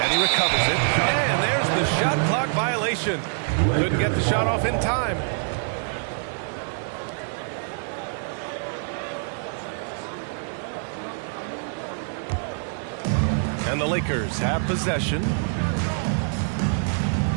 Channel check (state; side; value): silent; left; digital silence